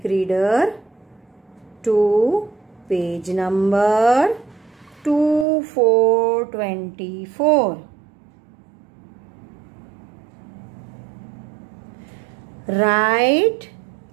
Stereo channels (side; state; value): left; drops out; at 5.5 s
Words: reader to page number 2424. Write